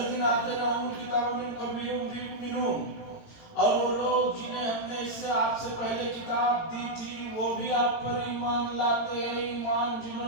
آتیناہم الکتاب من قبلہ ہم بہ یؤمنون، اور وہ لوگ جنہیں ہم نے اس سے آپ سے پہلے کتاب دی تھی وہ بھی آپ پر ایمان لاتے ہیں. ایمان جنہوں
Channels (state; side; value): late; right; 18 ms